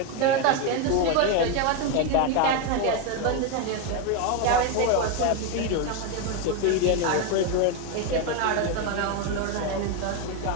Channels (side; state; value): both; different; correlation 0.02